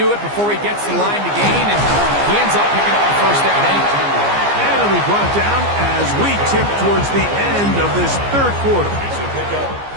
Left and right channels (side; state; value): left; late; 15 ms